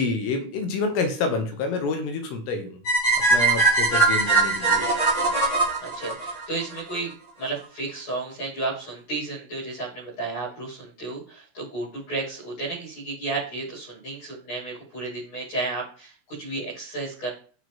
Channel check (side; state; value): right; late; 16 ms